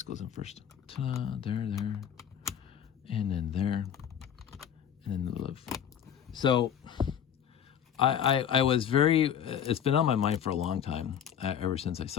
goes in first. Ta-da, there, and then there, and then the live. So I was very, it's been on my mind for a long time, ever since I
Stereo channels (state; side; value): quieter; right; 8.9 dB